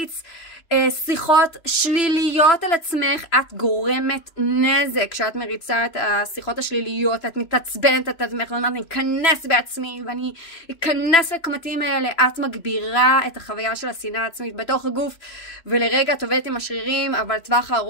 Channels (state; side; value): late; right; 2.8 ms